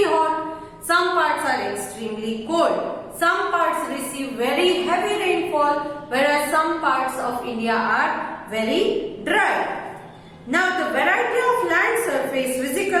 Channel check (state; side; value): identical; both; correlation 1.00